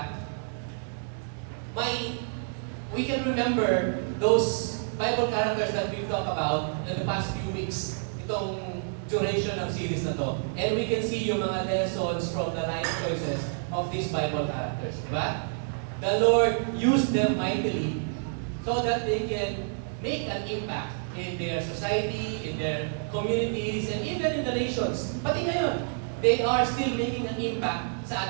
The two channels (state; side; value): silent; left; digital silence